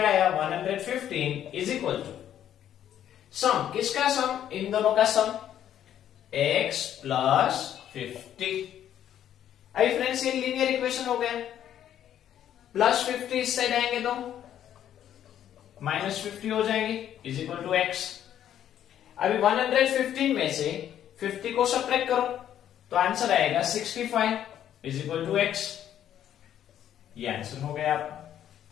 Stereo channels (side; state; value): right; quieter; 10.6 dB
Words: आया 115 इज इक्वल टू सम, किसका सम, इन दोनों का सम, x प्लस 50। अभी फ्रेंड्स ये लीनियर इक्वेशन हो गया, प्लस 50 इस साइड आएंगे तो माइनस 50 हो जाएंगे इज इक्वल टू x। अभी 115 में से 50 को सब्ट्रैक्ट करो तो आंसर आएगा 65 इज इक्वल टू x। ये आंसर हो गया आपका,